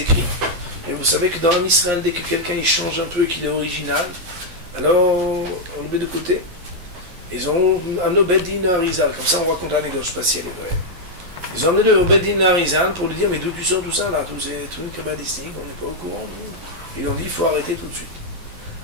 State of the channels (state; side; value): late; left; 11 ms